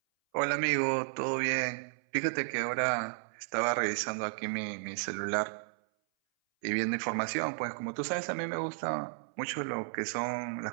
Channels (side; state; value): left; silent; 56 dB below the other